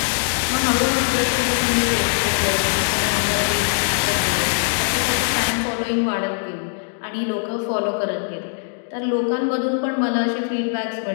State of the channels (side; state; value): right; silent; digital silence